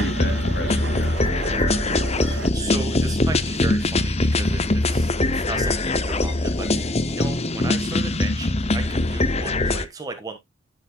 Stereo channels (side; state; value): both; normal; correlation 0.63